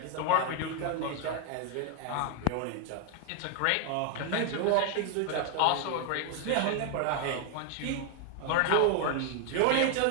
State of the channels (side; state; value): both; different; correlation 0.00